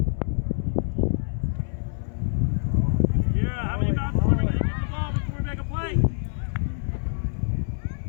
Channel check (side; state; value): right; silent; 61 dB below the other